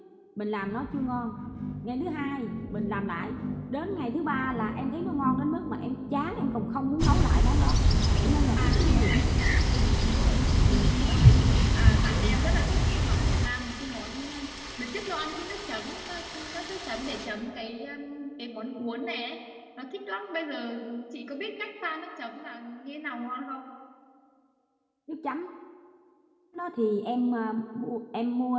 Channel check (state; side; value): identical; both; correlation 1.00